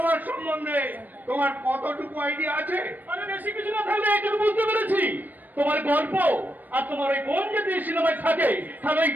সম্বন্ধে তোমার কতটুকু আইডিয়া আছে? আরে বেশি কিছু না থাকলে একটু বুঝতে পেরেছি। তোমার গল্প আর তোমার ওই বোন যদি সিনেমায় থাকে, তাহলে ওই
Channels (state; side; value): late; left; 0.087 ms